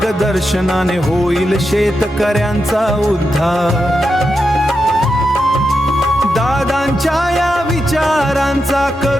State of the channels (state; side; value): normal; both; correlation 0.87